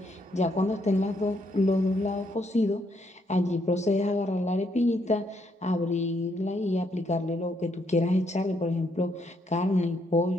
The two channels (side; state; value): both; normal; correlation 0.74